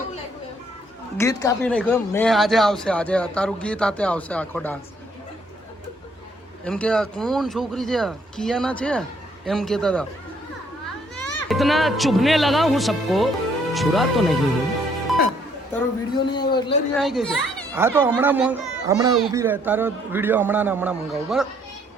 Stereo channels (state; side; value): normal; both; correlation 0.66